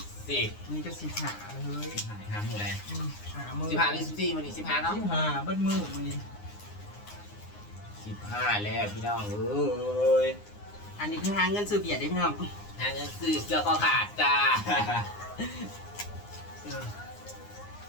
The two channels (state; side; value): late; right; 9.7 ms